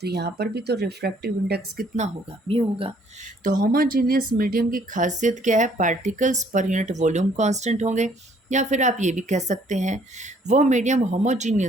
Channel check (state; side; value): normal; both; correlation 0.63